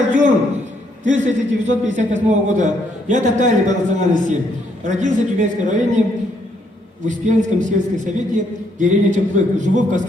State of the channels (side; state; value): both; normal; correlation 0.71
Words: 1958 года. Я татарин по национальности. Родился в Тюменском районе, в Успенском сельском совете, деревня Чемплык. Живу в